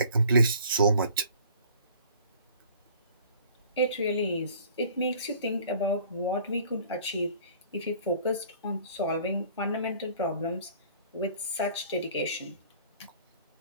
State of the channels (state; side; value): inverted; both; correlation -0.52